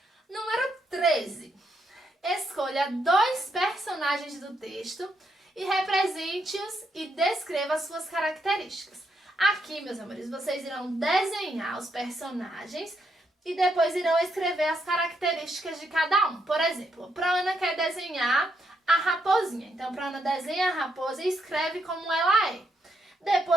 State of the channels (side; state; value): both; normal; correlation 0.78